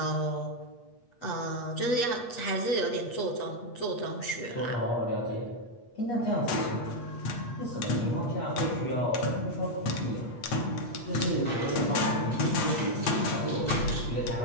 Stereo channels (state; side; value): late; right; 8.4 ms